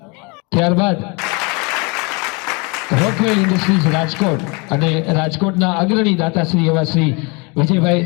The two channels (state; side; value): quieter; right; 29.9 dB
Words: ત્યારબાદ રોકવેલ ઇન્ડસ્ટ્રીઝ રાજકોટ અને રાજકોટના અગ્રણી દાતાશ્રી એવા શ્રી વિજયભાઈ